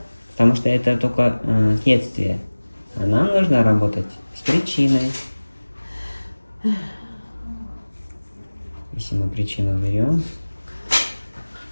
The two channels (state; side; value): inverted; both; correlation -1.00